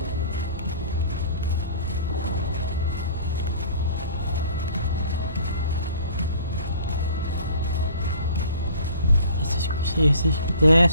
Is he there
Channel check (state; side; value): inverted; both; correlation -0.47